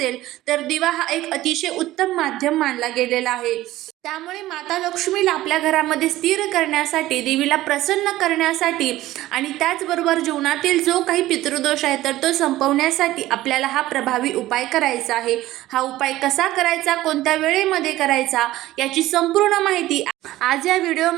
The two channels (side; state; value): left; quieter; 15.9 dB